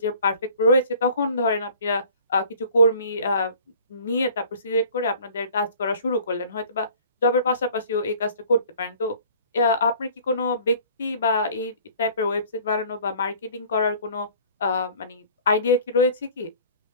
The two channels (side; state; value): both; inverted; correlation -0.50